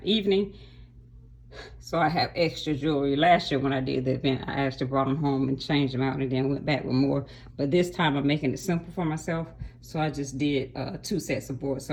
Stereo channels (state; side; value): identical; both; correlation 1.00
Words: evening. So I have extra jewelry. Last year when I did the event, I actually brought them home and changed them out and then went back with more. But this time I'm making it simple for myself. So I just did 2 sets of boards.